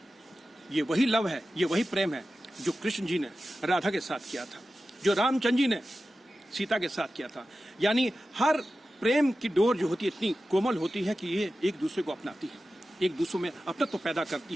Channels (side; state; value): both; normal; correlation 0.94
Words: ये वही लव है, ये वही प्रेम है जो कृष्ण जी ने राधा के साथ किया था, जो रामचंद्र जी ने सीता के साथ किया था। यानी हर प्रेम की डोर जो होती है इतनी कोमल होती है कि ये एक दूसरे को अपनाती है, एक दूसरे में अपनत्व पैदा करती